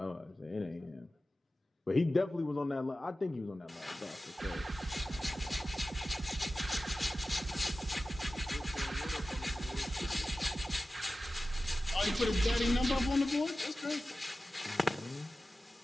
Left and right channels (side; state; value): both; normal; correlation 0.95